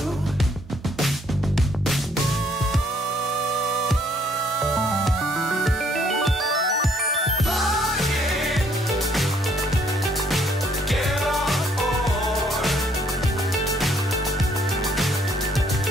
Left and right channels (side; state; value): both; normal; correlation 0.66